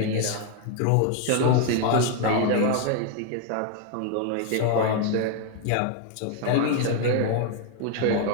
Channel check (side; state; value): both; different; correlation 0.01